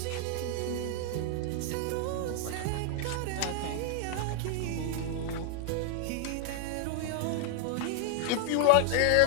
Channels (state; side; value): different; both; correlation 0.00